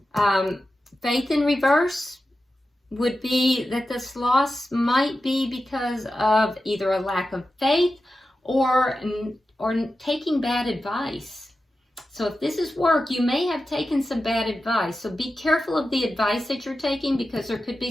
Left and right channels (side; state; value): both; normal; correlation 0.92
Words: Faith in reverse would be that this loss might be because of either a lack of faith or taking bad advice. So if this is work, you may have taken some bad advice. So be careful of the advice that you're taking, because there could